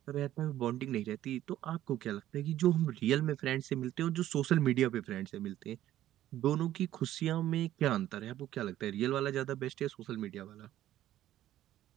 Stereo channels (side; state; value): left; quieter; 13.1 dB